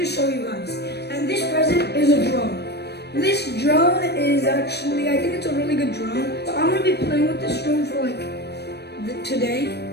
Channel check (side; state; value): right; late; 0.48 ms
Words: show you guys. And this present is a drone. This drone is actually, I think it's a really good drone. So I'm going to be playing with this drone for like today.